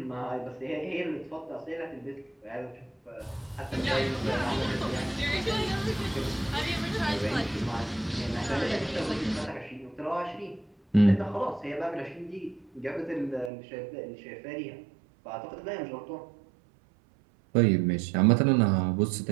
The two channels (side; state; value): left; drops out; at 13.5 s